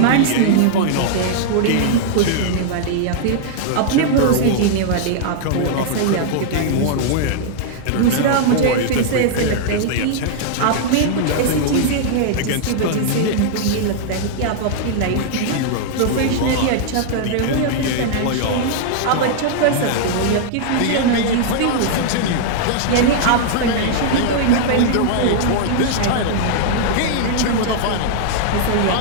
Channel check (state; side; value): different; both; correlation -0.01